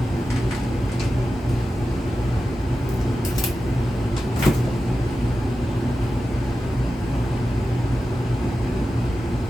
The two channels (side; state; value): both; normal; correlation 0.92